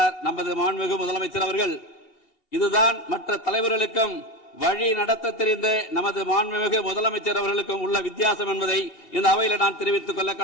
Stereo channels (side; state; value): right; late; 2.7 ms